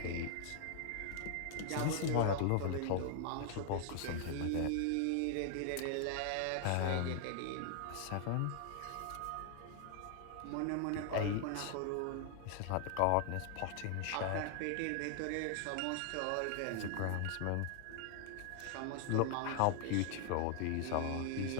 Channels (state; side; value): different; both; correlation 0.00